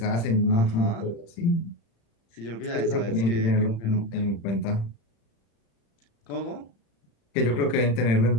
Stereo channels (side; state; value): right; late; 35 ms